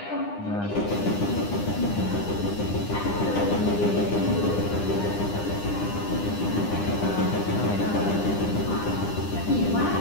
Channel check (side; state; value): right; late; 9.9 ms